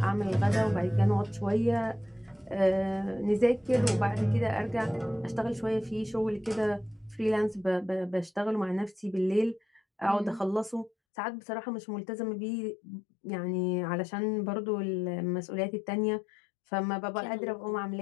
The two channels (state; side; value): drops out; right; at 10.9 s